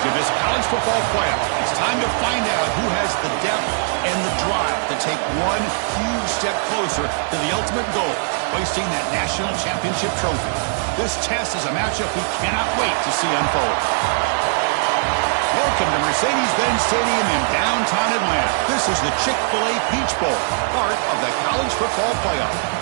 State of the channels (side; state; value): left; silent; digital silence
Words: of this college football playoff. It's time to find out who has the depth and the drive to take one huge step closer to the ultimate goal, hoisting that national championship trophy. This test is a matchup we cannot wait to see unfold. Welcome to Mercedes-Benz Stadium in downtown Atlanta. This is the Chick-fil-A Peach Bowl, part of the college football playoff.